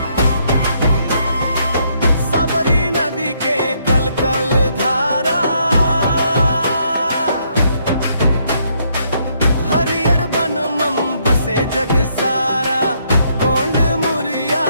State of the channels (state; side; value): inverted; both; correlation -0.72